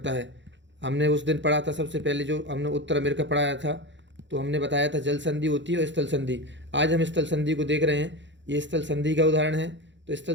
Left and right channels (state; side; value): late; left; 0.53 ms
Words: है। हमने उस दिन पढ़ा था, सबसे पहले जो हमने उत्तर अमेरिका पढ़ाया था, तो हमने बताया था जल संधि होती है और स्थल संधि। आज हम स्थल संधि को देख रहे हैं, ये स्थल संधि का उदाहरण है। तो स्थल